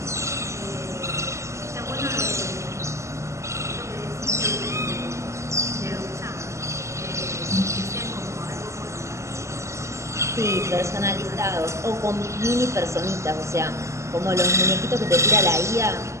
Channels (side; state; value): left; late; 0.14 ms